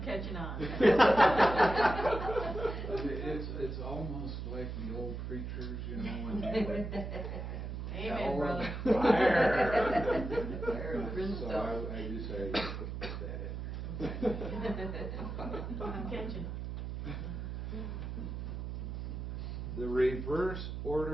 catching on. It's almost like the old preachers, you know, when they would Amen, hell brother. and fire. Brimstone. So I decided to put that in. I'm catching on. The reverse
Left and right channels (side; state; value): right; noise; hum, 5 dB below the sound